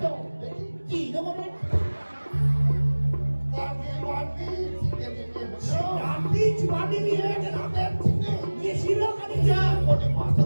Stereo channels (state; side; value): inverted; both; correlation -1.00